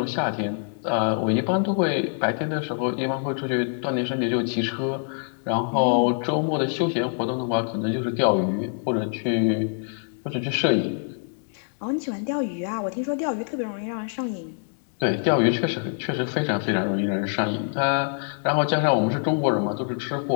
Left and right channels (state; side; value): silent; right; 62 dB below the other